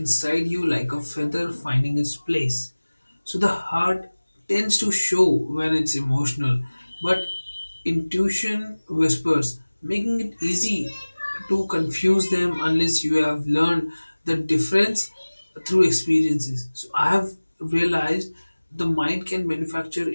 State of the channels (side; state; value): both; inverted; correlation -1.00